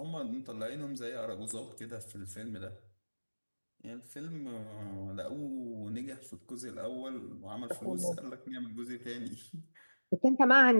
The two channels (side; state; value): both; inverted; correlation -1.00